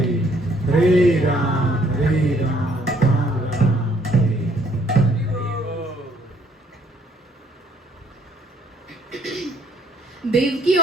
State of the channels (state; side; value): normal; both; correlation 0.64